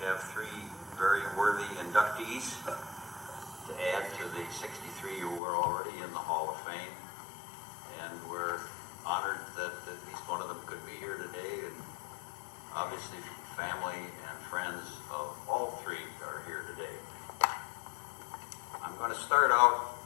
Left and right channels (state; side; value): drops out; right; at 5.4 s